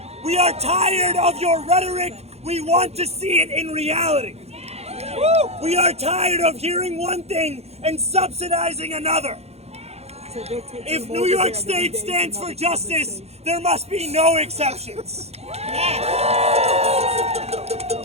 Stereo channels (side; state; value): left; late; 0.31 ms